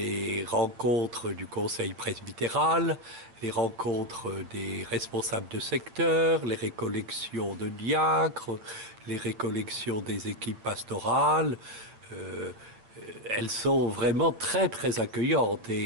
rencontres du conseil presbytéral, les rencontres des responsables de secteur, les récollections de diacres, les récollections des équipes pastorales. Euh, Elles sont vraiment très très accueillantes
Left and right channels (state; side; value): late; left; 9.0 ms